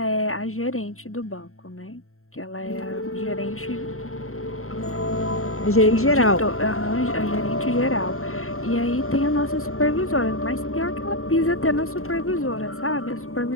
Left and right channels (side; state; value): right; late; 0.62 ms